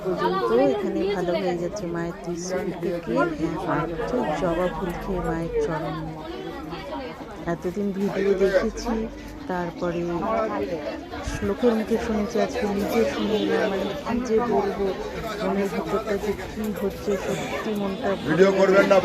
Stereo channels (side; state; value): both; identical; correlation 1.00